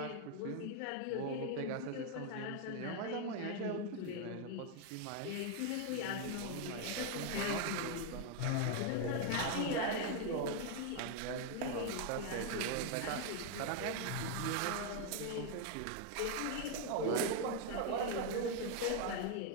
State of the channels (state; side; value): different; both; correlation 0.00